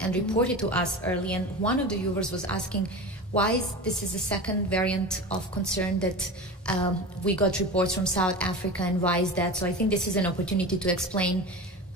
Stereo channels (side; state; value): both; normal; correlation 0.29